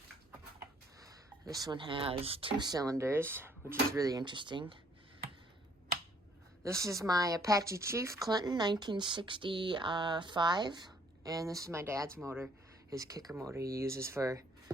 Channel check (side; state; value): both; normal; correlation 0.63